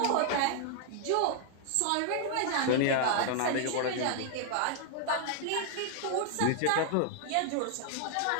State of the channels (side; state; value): both; different; correlation -0.01